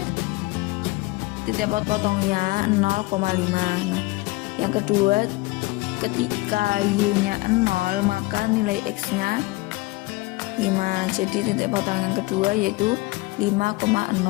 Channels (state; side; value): quieter; right; 21.7 dB